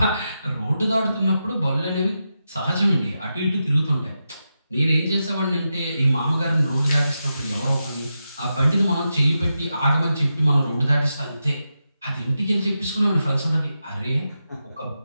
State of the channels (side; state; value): both; inverted; correlation -0.89